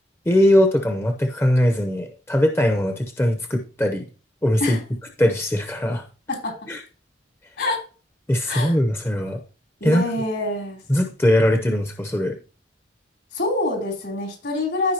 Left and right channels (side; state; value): both; normal; correlation 0.78